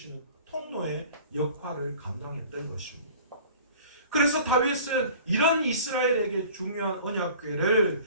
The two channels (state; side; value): inverted; both; correlation -0.45